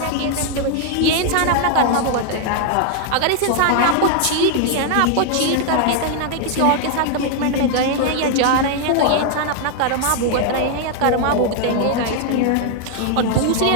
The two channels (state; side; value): different; both; correlation 0.00